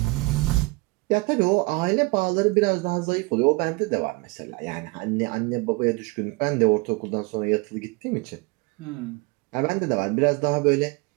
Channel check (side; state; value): left; quieter; 25.3 dB